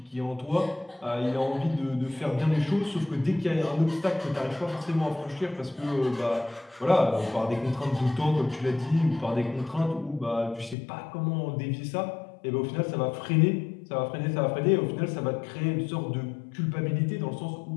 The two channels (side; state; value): right; drops out; at 10.8 s